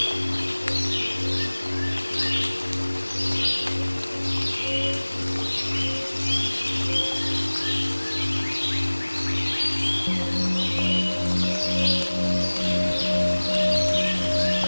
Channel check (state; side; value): inverted; both; correlation -1.00